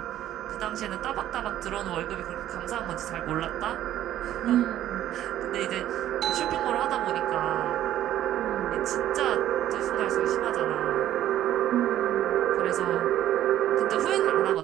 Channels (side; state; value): left; quieter; 12.4 dB